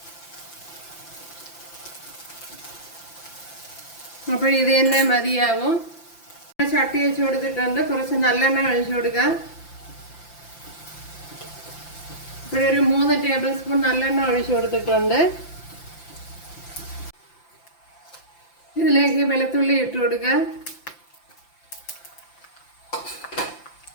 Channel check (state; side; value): late; right; 5.9 ms